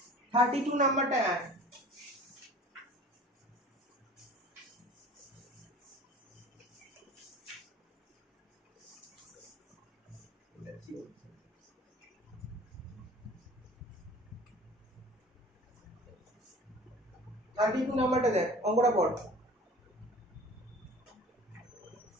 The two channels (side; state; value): both; normal; correlation 0.44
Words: 32 নাম্বারটা এক। থার্টি টু নাম্বারটা দেখ, অঙ্কটা পড়।